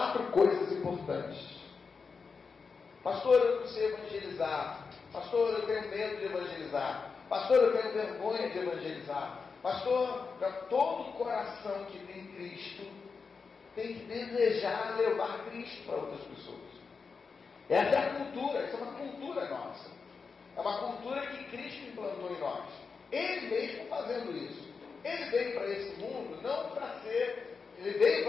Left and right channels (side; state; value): right; quieter; 5.1 dB